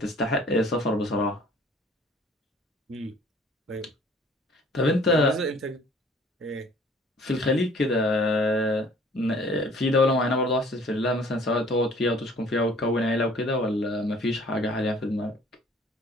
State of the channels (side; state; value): both; normal; correlation 0.54